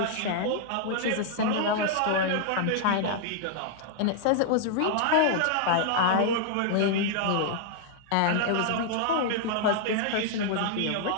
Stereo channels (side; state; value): both; different; correlation -0.01